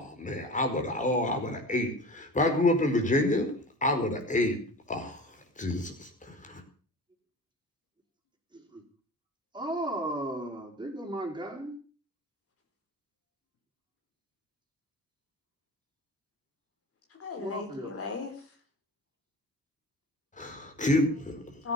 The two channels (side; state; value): both; normal; correlation 0.36